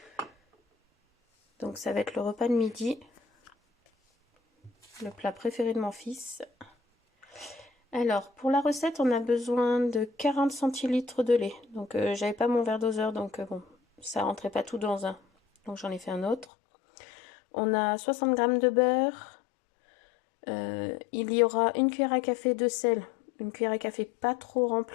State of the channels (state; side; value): drops out; right; at 16.4 s